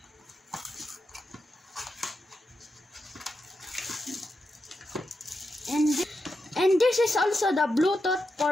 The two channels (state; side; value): normal; both; correlation 0.87